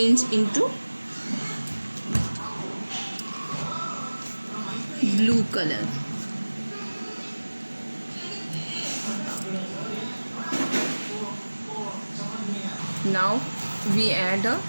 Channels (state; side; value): inverted; both; correlation -1.00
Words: into blue color. Now we add a